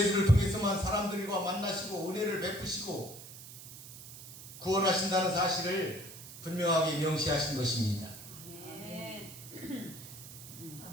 통해서만 사람들과 만나시고 은혜를 베푸시고 구원하신다는 사실을 분명하게 명시하신 것입니다.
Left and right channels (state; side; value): noise; right; hiss, 14 dB below the sound